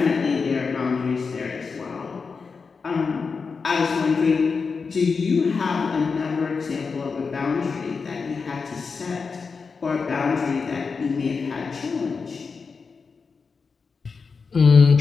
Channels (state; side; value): quieter; right; 5.0 dB